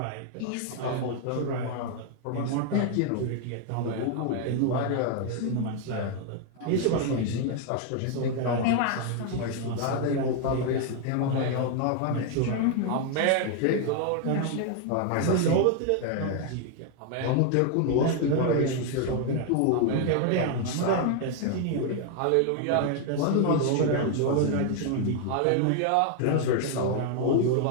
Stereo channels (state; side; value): different; both; correlation 0.00